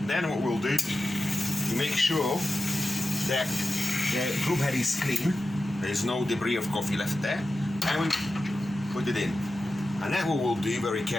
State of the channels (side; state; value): both; normal; correlation 0.92